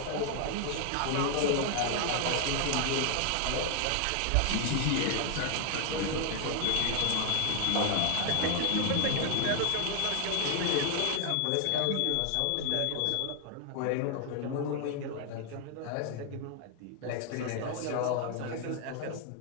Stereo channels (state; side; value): different; both; correlation 0.00